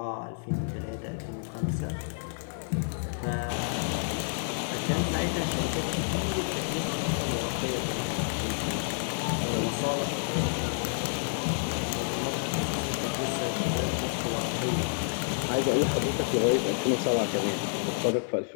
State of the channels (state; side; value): silent; right; digital silence